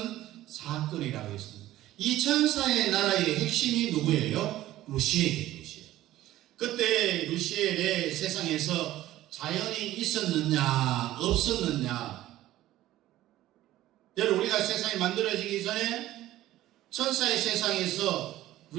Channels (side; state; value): left; quieter; 14.9 dB